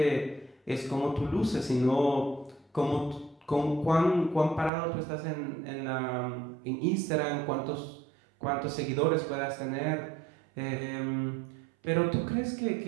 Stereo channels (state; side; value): drops out; left; at 4.7 s